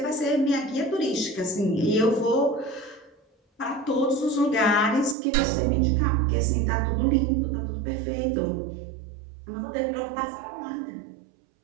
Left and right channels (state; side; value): drops out; left; at 5.2 s